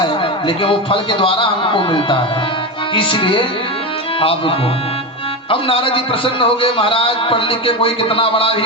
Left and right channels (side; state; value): both; normal; correlation 0.17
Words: लेकिन वो फल के द्वारा हमको मिलता है, इसलिए आपको। अब नारद जी प्रसन्न हो गए, महाराज पढ़ लिख के कोई कितना बड़ा भी